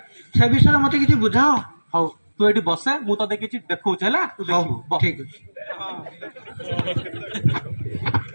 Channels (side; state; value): both; inverted; correlation -1.00